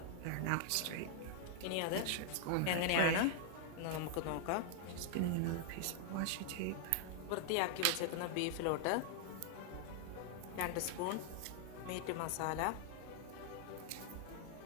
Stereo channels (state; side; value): different; both; correlation 0.00